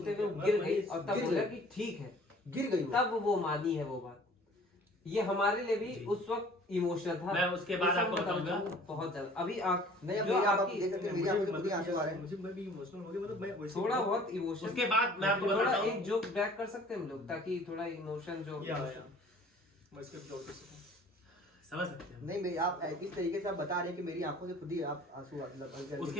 वो गिर गई और तब गिर बोला गई। कि ठीक है, गिर गई वो। तब वो मानी है वो बात। ये हमारे लिए भी जी। उस वक्त इमोशनल था। मैं उसके बाद ये सब आपको बताना बताऊंगा। चाहूंगा, बहुत ज्यादा। अभी आंख नहीं, अब जो मेरी आप आपकी- देख सकते हैं, मेरी आंखों से खुद ही आंसू आ रहे हैं। मुझे मैं भी इमोशनल हो गया, मतलब मैं वैसे थोड़ा बहुत इमोशन। उसके बाद मैं आपको थोड़ा बताता हूँ, एक जोक बैक कर सकते हैं हम लोग, ताकि थोड़ा इमोशन जो या मैं इसके जवाब दे सकता हूँ। समझ सकते हैं। नहीं मेरी आप इस तरीके से आप बता रहे हैं कि मेरी आंखों से खुद ही आप आंसू मतलब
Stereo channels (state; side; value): normal; both; correlation 0.51